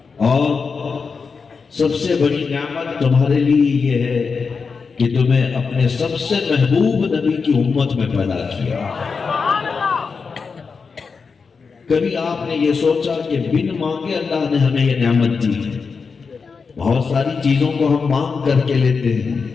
اور سب سے بڑی نعمت تمہارے لیے یہ ہے کہ تمہیں اپنے سب سے محبوب نبی کی امت میں پیدا کیا۔ کبھی آپ نے یہ سوچا کہ بن مانگے اللہ نے ہمیں یہ نعمت دی ہے؟ بہت ساری چیزوں کو ہم مانگ کر کے لیتے ہیں،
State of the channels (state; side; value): quieter; right; 5.1 dB